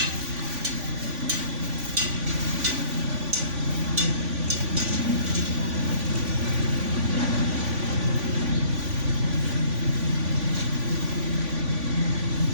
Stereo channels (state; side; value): late; left; 3.5 ms